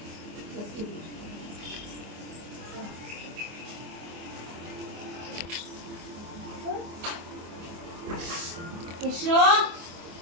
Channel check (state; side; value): late; left; 24 ms